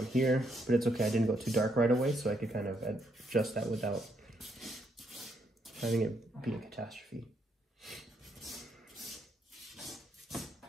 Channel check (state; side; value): normal; both; correlation 0.75